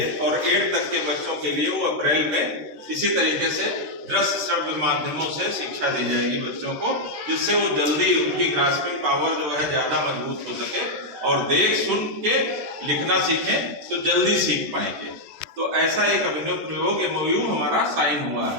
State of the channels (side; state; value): left; late; 13 ms